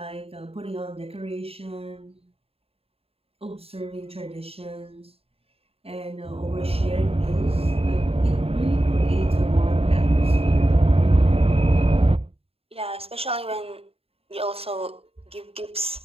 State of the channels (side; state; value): left; late; 0.28 ms